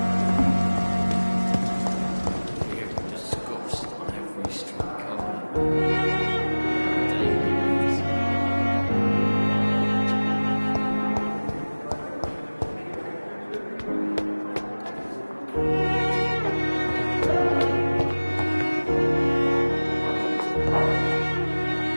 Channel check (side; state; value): both; inverted; correlation -1.00